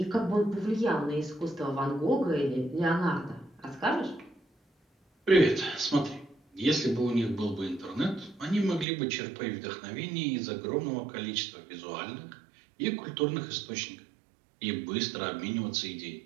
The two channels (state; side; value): drops out; left; at 8.8 s